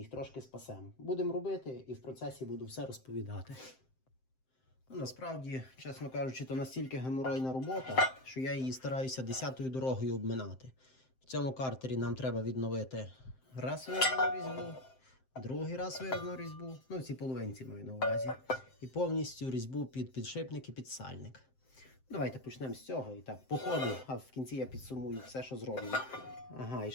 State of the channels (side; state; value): right; late; 7.7 ms